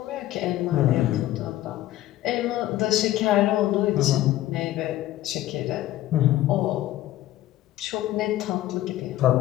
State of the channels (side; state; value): right; quieter; 14.5 dB